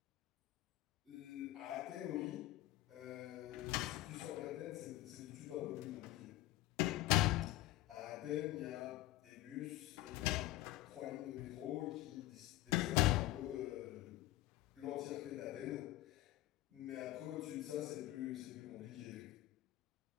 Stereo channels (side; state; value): right; quieter; 16.3 dB